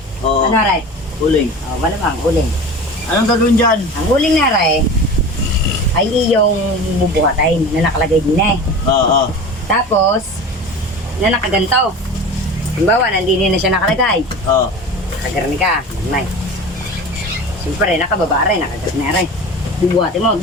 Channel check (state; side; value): normal; both; correlation 0.34